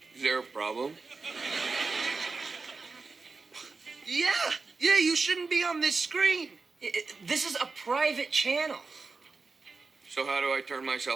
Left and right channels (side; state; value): left; quieter; 4.2 dB